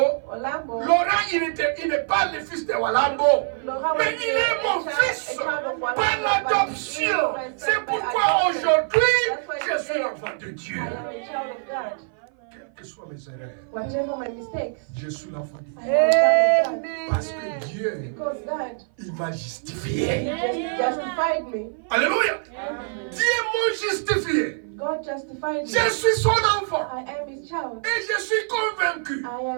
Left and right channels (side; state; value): left; silent; 56 dB below the other